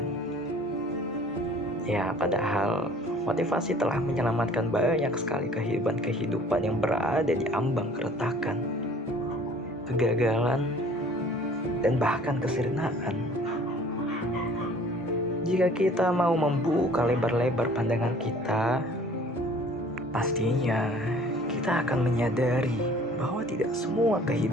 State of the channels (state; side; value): normal; both; correlation 0.51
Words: Ya, padahal motivasi telah menyelamatkan banyak sekali kehidupan yang berada di ambang keretakan, kegagalan, dan bahkan kesirnaan. Jika kita mau membuka lebar-lebar pandangan kita, pastinya kita akan menyadari bahwa tidak semua